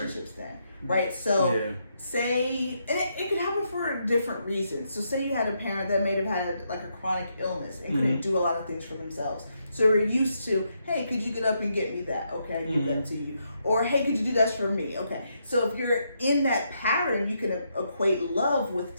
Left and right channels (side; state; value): both; inverted; correlation -0.79